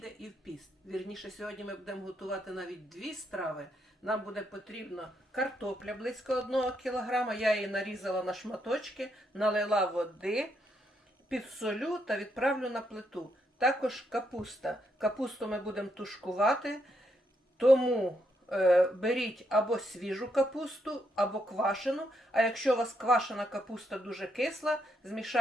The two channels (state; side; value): normal; both; correlation 0.78